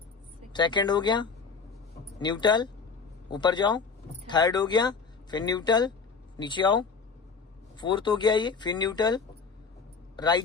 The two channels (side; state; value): right; quieter; 5.2 dB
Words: सेकंड हो गया, न्यूट्रल, ऊपर जाओ, थर्ड हो गया, फिर न्यूट्रल, नीचे आओ, फोर्थ हो गया ये, फिर न्यूट्रल,